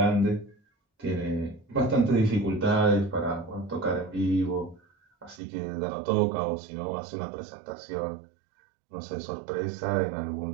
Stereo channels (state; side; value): drops out; left; at 5.4 s